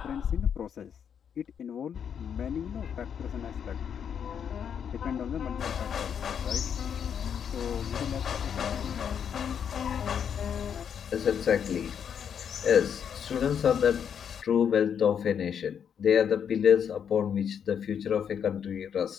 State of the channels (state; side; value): quieter; right; 7.9 dB